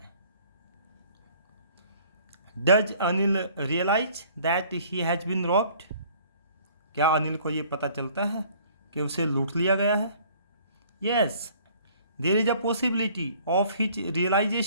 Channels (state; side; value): inverted; both; correlation -0.55